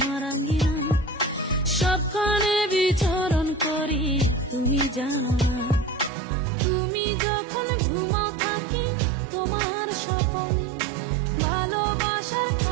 আঙ্গিনা সবখানে বিচরণ করি তুমি জানো না তুমি যখন ঘুমাও থাকি তোমার স্বপ্নে ভালোবাসার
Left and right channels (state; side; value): drops out; left; at 6.1 s